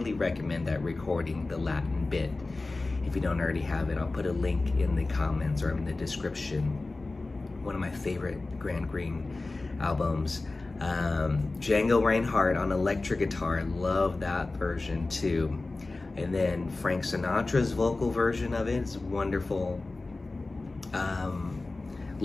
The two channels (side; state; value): right; quieter; 3.3 dB